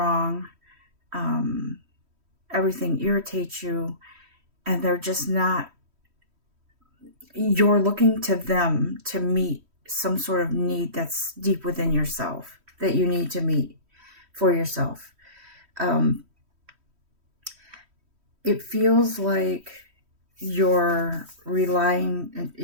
everything irritates you, and they're just not, you're looking to them to meet some sort of need that's deep within yourself that you need to meet for yourself. It feels like you're relying,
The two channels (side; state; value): left; late; 3.1 ms